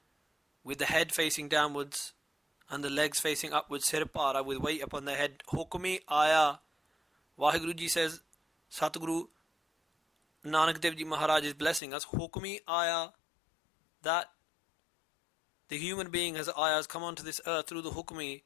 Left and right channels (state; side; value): drops out; right; at 11.8 s